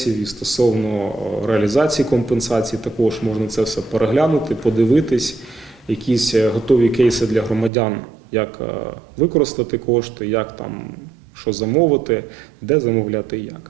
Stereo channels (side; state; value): left; drops out; at 7.7 s